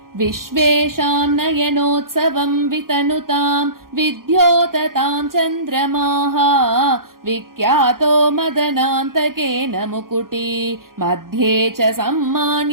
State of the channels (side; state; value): left; late; 0.92 ms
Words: विश्वेषां नयनोत्सवं वितनुतां विद्योततां चन्द्रमाः विख्यातो मदनान्तकेन मुकुटी मध्ये च